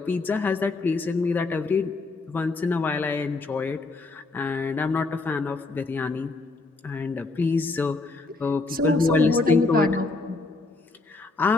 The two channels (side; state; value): right; quieter; 3.5 dB